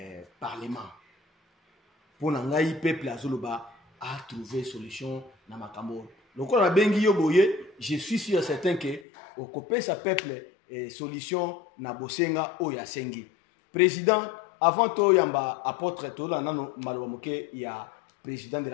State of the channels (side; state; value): right; drops out; at 9.0 s